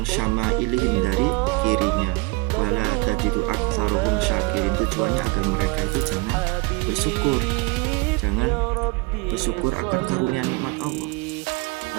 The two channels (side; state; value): left; quieter; 25.3 dB